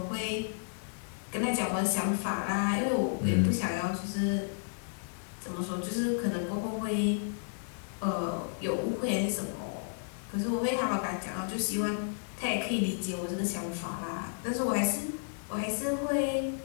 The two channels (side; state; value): right; silent; digital silence